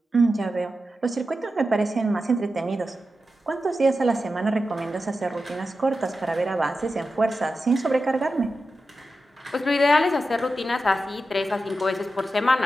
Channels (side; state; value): both; normal; correlation 0.91